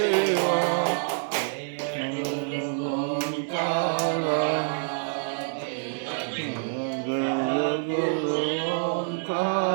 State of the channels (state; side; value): silent; left; 60 dB below the other